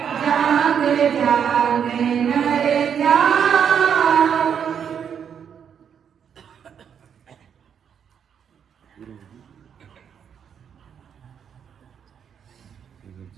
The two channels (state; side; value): quieter; left; 7.9 dB